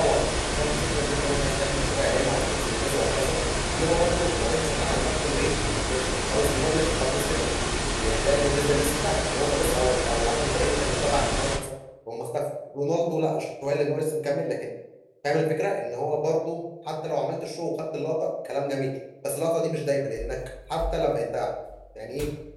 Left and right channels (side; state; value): both; identical; correlation 1.00